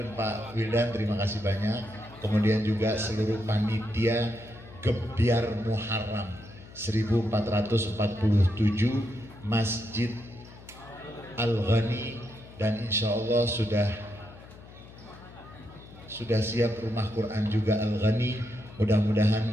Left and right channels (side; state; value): left; noise; hum, 19 dB below the sound